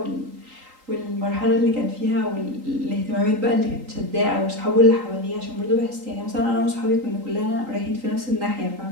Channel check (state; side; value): late; left; 3.8 ms